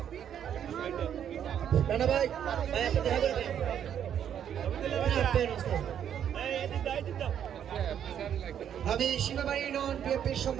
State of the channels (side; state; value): left; quieter; 9.3 dB